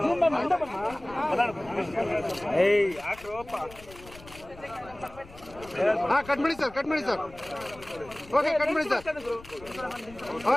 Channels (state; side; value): noise; left; rumble, 20 dB below the sound